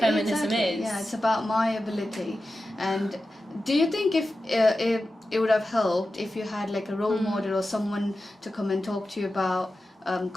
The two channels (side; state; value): both; normal; correlation 0.93